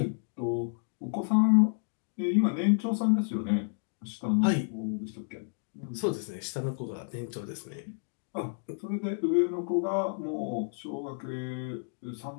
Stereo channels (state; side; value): silent; right; digital silence